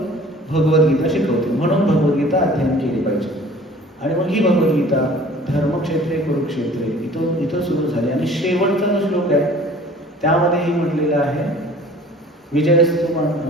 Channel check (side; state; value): both; normal; correlation 0.49